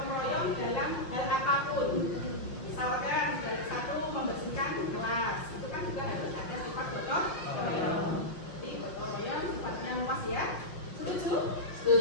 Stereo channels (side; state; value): right; late; 5.7 ms